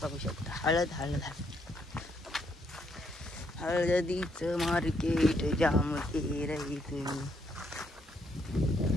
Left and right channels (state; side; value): normal; both; correlation 0.73